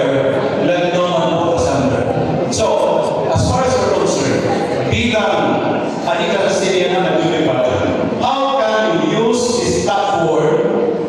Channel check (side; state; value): both; identical; correlation 1.00